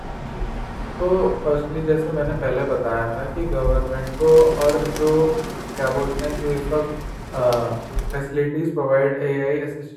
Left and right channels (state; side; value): identical; both; correlation 1.00